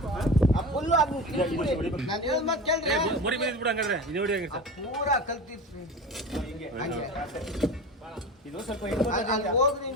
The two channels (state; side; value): normal; both; correlation 0.30